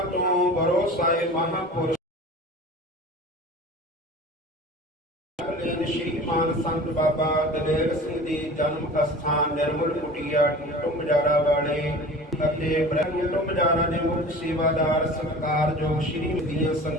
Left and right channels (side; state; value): both; normal; correlation 0.39